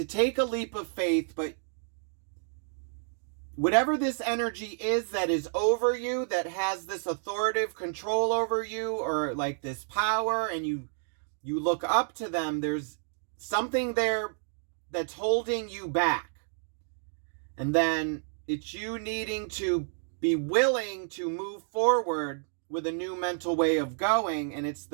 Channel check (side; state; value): left; silent; digital silence